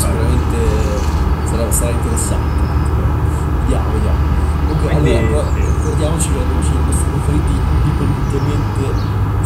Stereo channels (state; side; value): identical; both; correlation 1.00